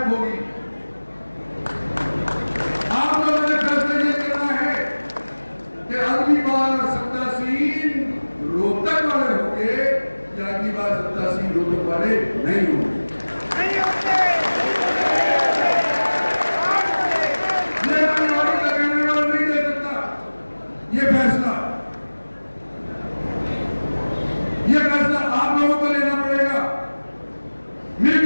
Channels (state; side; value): inverted; both; correlation -1.00